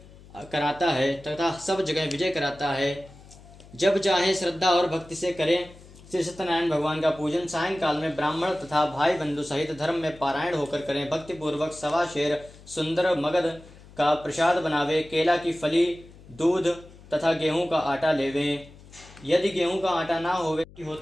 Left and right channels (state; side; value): noise; left; hum, 21 dB below the sound